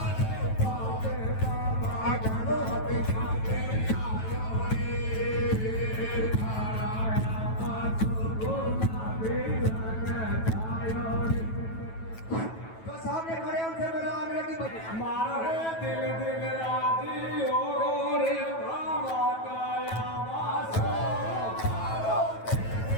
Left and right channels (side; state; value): right; late; 9.2 ms